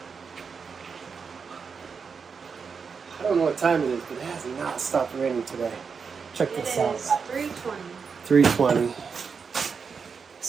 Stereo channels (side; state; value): left; quieter; 5.7 dB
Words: I don't know what time it is, but it has not stopped raining today. Check this out. 320. 3:20.